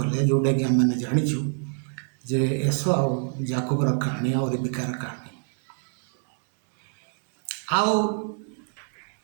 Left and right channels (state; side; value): silent; left; 61 dB below the other